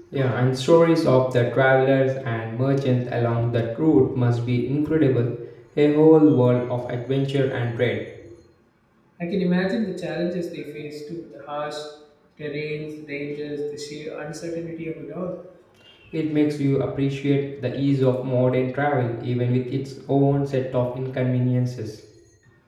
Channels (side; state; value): both; identical; correlation 1.00